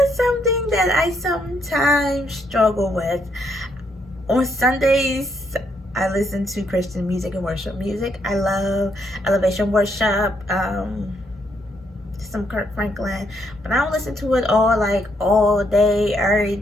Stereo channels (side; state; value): both; normal; correlation 0.74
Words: something that I sometimes struggle with. On Sundays, I listen to Christian music and worship music. I love elevation worship, some Kirk Franklin, but I don't listen to it all day, every